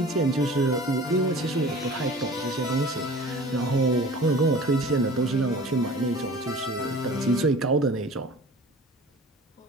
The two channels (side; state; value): both; normal; correlation 0.42